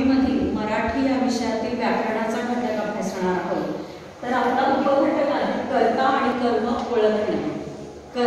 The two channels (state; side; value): identical; both; correlation 1.00